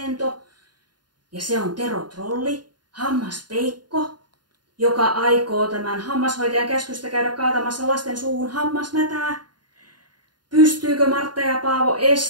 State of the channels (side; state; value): left; late; 0.70 ms